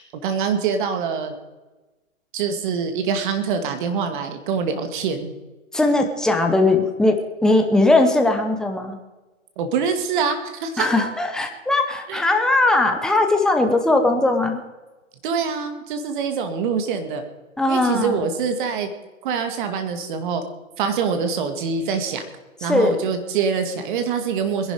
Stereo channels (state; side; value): normal; both; correlation 0.50